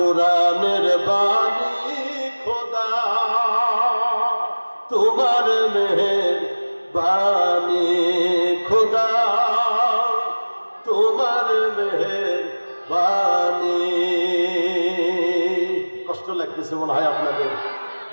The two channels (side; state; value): both; inverted; correlation -1.00